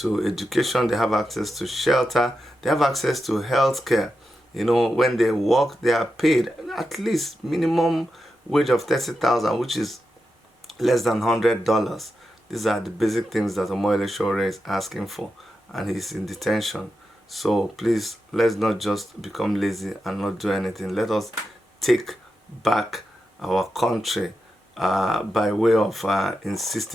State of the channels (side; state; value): both; normal; correlation 0.89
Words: education, they have access to shelter, they have access to health care. You know, when they work, they are paid at least minimum wage of 30,000, which is less than $100. These are the basic things that Omoyele Sowore is asking for, and he's in detention. So please, let's not just become lazy and not do anything. Let us take back our country by way of